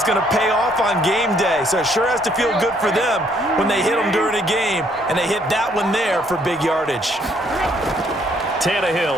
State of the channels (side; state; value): both; normal; correlation 0.67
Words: going to pay off on game day. So it sure has to feel good for them when they hit them during a game, and they hit that one there for big yardage. Tannehill